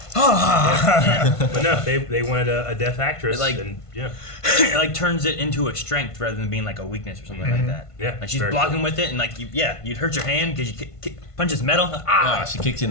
But no, they wanted a deaf actress. It, like- and It like turns it into a strength rather than being like a weakness or something like that. Yeah, Like she's very blocking cool. with it, and like you'd hurt your hand because you punches metal. Ah, she kicks you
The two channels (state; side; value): late; right; 1.5 ms